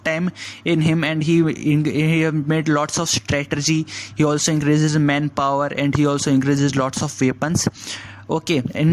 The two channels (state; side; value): identical; both; correlation 1.00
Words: time in him, and he made lots of strategy. He also increases manpower, and he also increases lots of weapons. Okay,